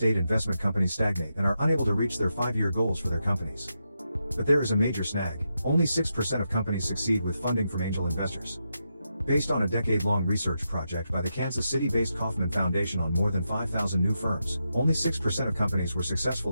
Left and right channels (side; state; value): both; inverted; correlation -0.85